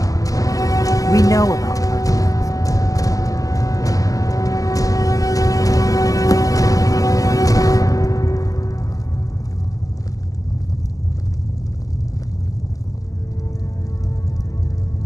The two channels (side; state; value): right; late; 0.17 ms